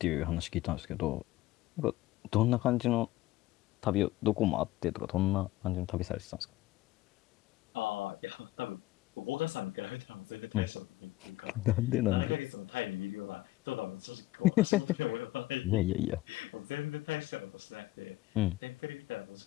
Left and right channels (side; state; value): right; quieter; 17.3 dB